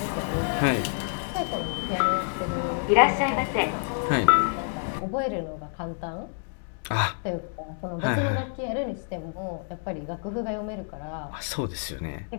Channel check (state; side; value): silent; right; 60 dB below the other